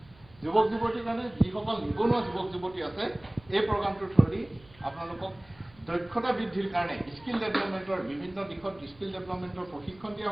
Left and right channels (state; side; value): noise; right; hum, 26 dB below the sound